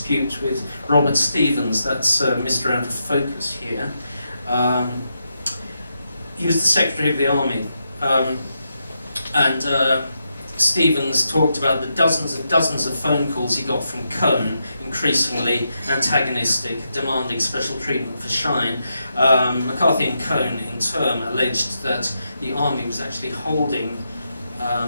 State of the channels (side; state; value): both; inverted; correlation -0.84